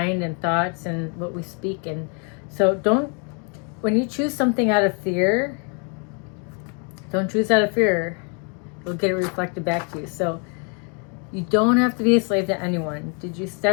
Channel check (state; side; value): quieter; right; 37.4 dB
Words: and thoughts and what we speak. And so when you choose something out of fear, don't choose out of fear. You'll get it reflected back to you. So you don't have to be a slave to anyone. Did you